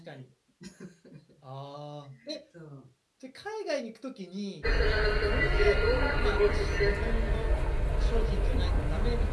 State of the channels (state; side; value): identical; both; correlation 1.00